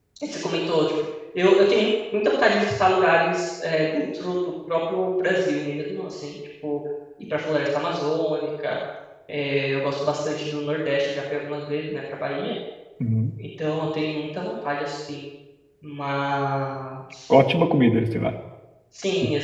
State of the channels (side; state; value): both; identical; correlation 1.00